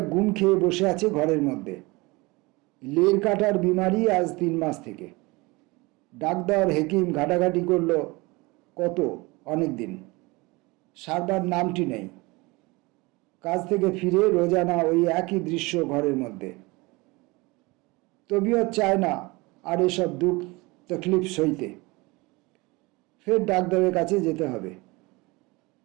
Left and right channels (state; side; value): quieter; left; 24.0 dB